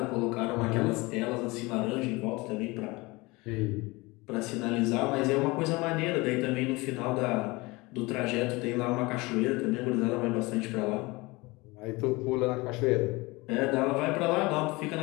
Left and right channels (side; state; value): right; quieter; 23.5 dB